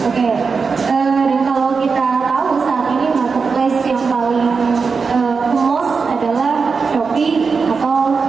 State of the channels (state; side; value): quieter; left; 5.0 dB